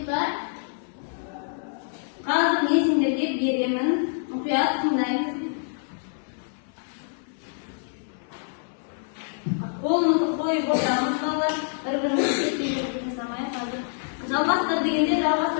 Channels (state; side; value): silent; right; 57 dB below the other